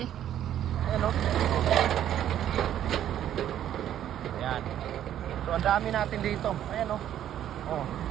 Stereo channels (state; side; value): quieter; left; 11.0 dB